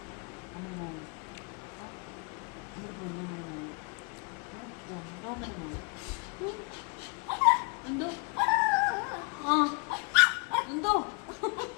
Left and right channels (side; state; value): right; quieter; 34.2 dB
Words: അമ്മ മോള് നമ്മുടെ പൊന്നമ്മ മോള് ഒന്നോമ്മ മോള് എന്തോ എന്തോ